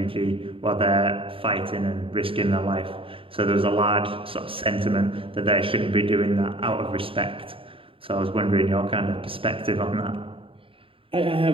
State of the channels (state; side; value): late; left; 0.26 ms